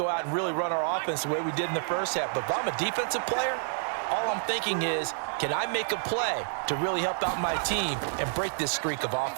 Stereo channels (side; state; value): left; silent; digital silence